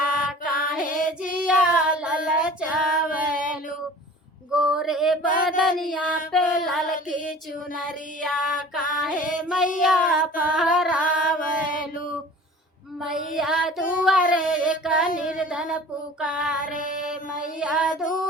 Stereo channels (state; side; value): normal; both; correlation 0.43